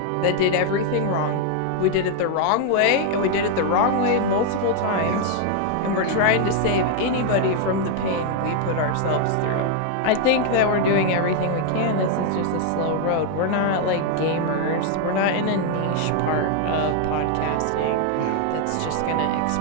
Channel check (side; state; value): both; different; correlation 0.00